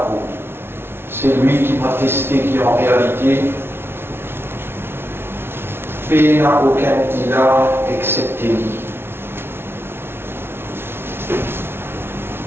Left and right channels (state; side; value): late; left; 0.11 ms